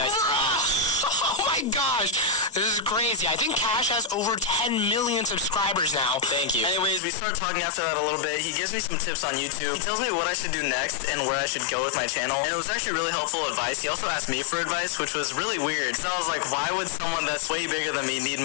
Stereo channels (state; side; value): drops out; right; at 7.0 s